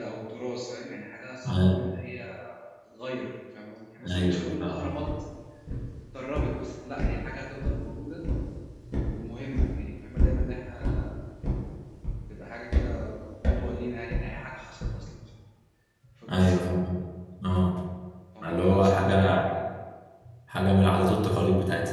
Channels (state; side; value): identical; both; correlation 1.00